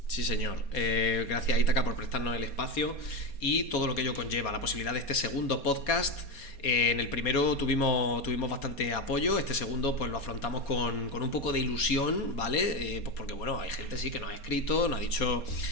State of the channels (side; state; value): right; late; 4.2 ms